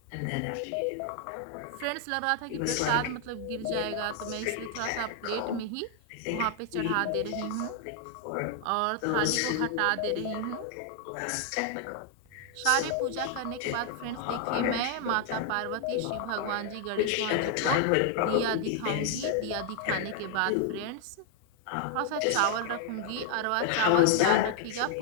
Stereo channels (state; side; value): different; both; correlation 0.00